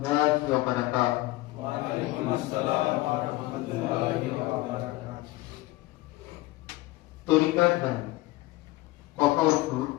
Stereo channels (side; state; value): right; quieter; 18.7 dB